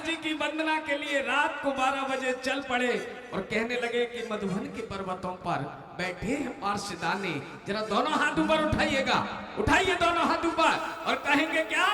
जी की वंदना के लिए रात को 12 बजे चल पड़े और कहने लगे कि मधुबन के पर्वतों पर बैठे हैं पार्षदाने, जरा दोनों हाथ ऊपर उठाइएगा, उठाइए दोनों हाथ ऊपर और कहेंगे क्या?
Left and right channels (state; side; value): identical; both; correlation 1.00